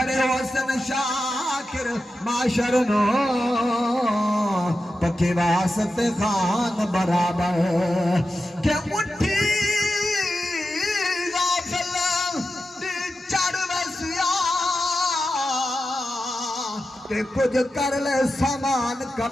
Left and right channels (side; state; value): both; normal; correlation 0.91